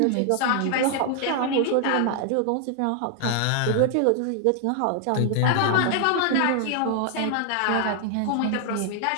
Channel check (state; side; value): different; both; correlation 0.00